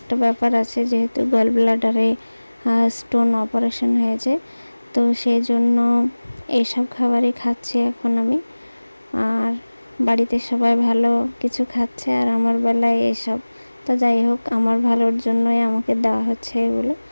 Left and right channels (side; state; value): both; inverted; correlation -1.00